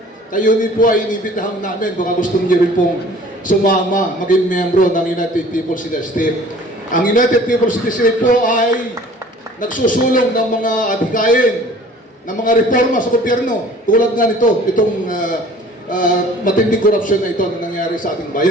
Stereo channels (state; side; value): normal; both; correlation 0.49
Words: kayo din po ay inibitahan namin. Baka gusto niyo rin pong sumama, maging membro ng United People's Initiative. Ang United People's Initiative po ay nagsusulong ng mga adhikain, ng mga reforma sa gobyerno. Tulad nga nito, itong matinding korupsyon na ito na nangyari sa ating